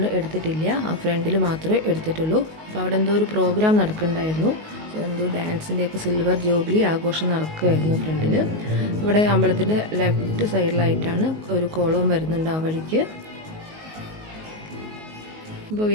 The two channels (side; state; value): left; late; 19 ms